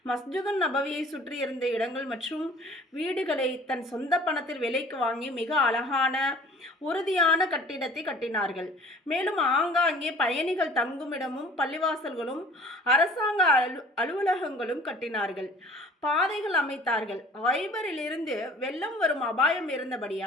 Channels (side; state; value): both; normal; correlation 0.49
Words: மஸ்ஜிதுன் நபவியை சுற்றி இருந்த இடங்கள் மற்றும் வீடுகளை தன் சொந்த பணத்தில் விலைக்கு வாங்கி மிக அழகான உறுதியான கட்டிடத்தை கட்டினார்கள். மேலும் ஆங்காங்கே பயணிகள் தங்குமிடமும் பள்ளிவாசல்களும் அரசாங்க அலுவலகங்களும் கட்டினார்கள். பாதைகள் அமைத்தார்கள். ஐபரிலிருந்து வெள்ளம் வரும் அபாயம்